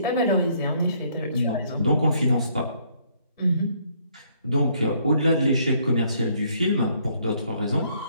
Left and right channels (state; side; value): inverted; both; correlation -0.66